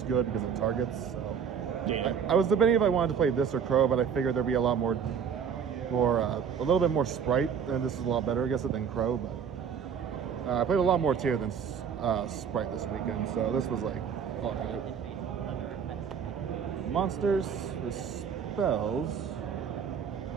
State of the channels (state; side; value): quieter; left; 7.3 dB